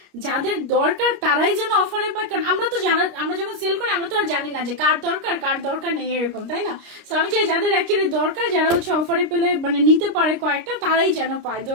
যাদের দরকার তারাই যেন অফারে পায়, কারণ আমরা যখন সেল করি আমরা তো আর জানি না যে কার দরকার নেই এরকম, তাই না? তো আমি চাই যাদের অ্যাকচুয়ালি দরকার, যারা হচ্ছে অফারে পেলে মানে নিতে পারে কয়েকটা, তারাই যেন পায়,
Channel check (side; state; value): left; late; 29 ms